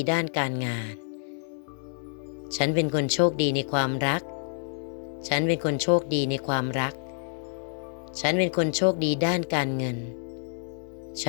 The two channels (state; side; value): silent; right; digital silence